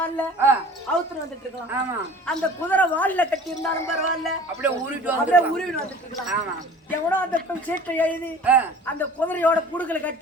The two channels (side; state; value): both; normal; correlation 0.44